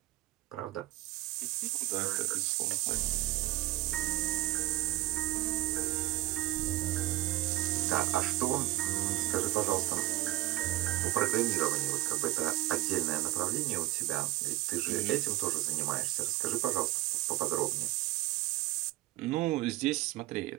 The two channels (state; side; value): quieter; left; 17.2 dB